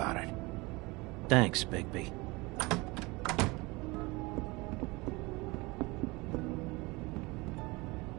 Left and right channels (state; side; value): quieter; left; 24.1 dB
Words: it. Thanks, Bigby.